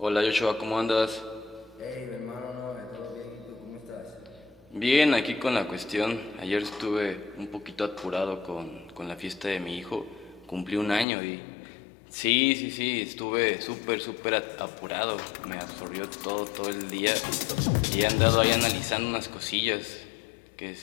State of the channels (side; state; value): right; drops out; at 11.1 s